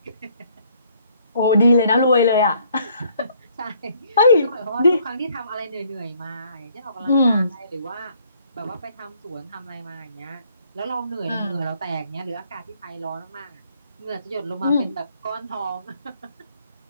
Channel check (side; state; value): both; inverted; correlation -0.64